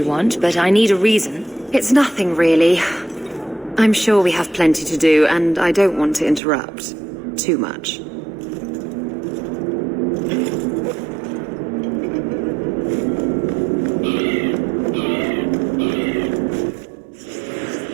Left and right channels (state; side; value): drops out; left; at 6.4 s